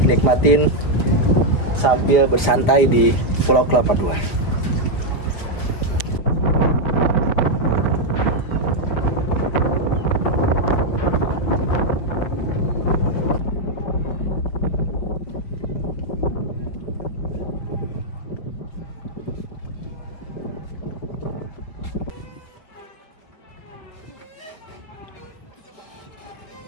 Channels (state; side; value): late; right; 5.0 ms